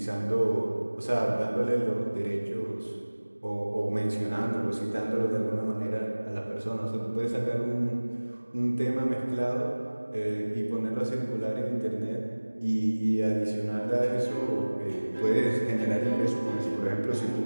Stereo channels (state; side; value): inverted; both; correlation -1.00